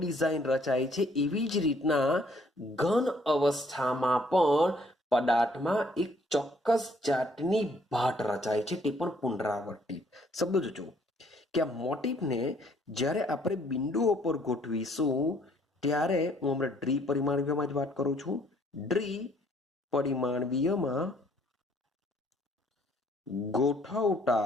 રચાય છે એવી જ રીતના ઘન અવસ્થામાં પણ પદાર્થમાં એક ચોક્કસ જાતની ભાટ રચાય છે, તે પણ પુનરાવર્તિત. શબ્દો જોજો કે આ મોટીફને જ્યારે આપણે બિંદુઓ પર ગોઠવીશું ત્યારે હું હમણાં દ્વિપરિમાણીયમાં જ વાત કરું છું. દ્વિપરિમાણીયમાં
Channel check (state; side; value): normal; both; correlation 0.64